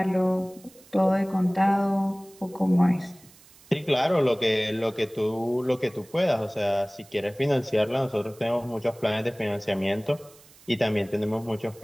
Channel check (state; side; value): noise; right; hiss, 25 dB below the sound